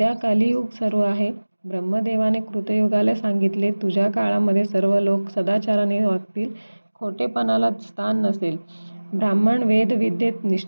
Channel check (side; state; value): both; inverted; correlation -1.00